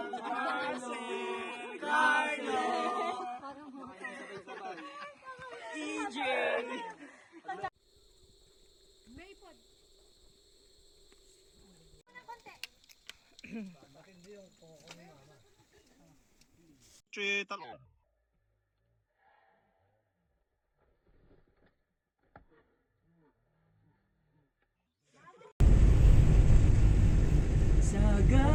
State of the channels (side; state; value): both; identical; correlation 1.00